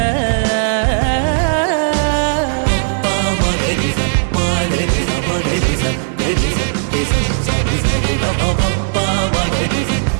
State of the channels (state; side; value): silent; left; 59 dB below the other